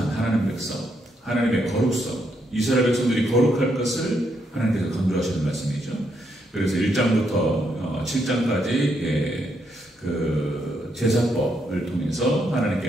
하나님 백성, 하나님의 거룩성, 이스라엘 백성들이 거룩할 것을 하나님께서 강조하시는 말씀이죠. 그래서 1장부터 7장까지 그 제사법을 통해서 하나님께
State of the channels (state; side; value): normal; both; correlation 0.77